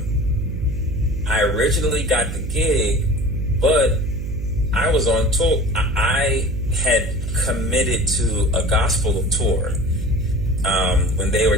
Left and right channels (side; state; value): right; noise; hum, 5 dB below the sound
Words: I originally got the gig, but I was on tour. I had committed to a gospel tour when they were